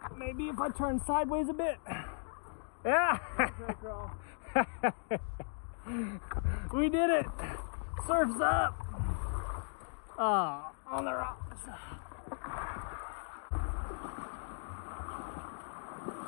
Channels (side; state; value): right; silent; digital silence